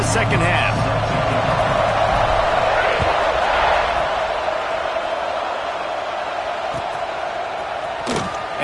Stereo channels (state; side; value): identical; both; correlation 1.00